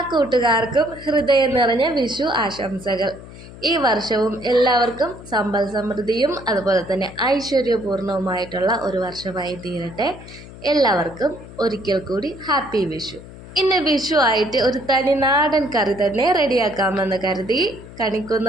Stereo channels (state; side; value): noise; left; hum, 16 dB below the sound